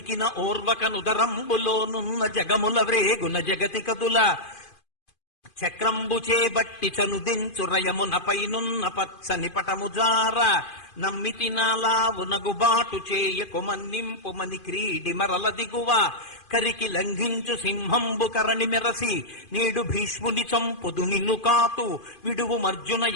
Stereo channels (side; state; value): right; late; 2.5 ms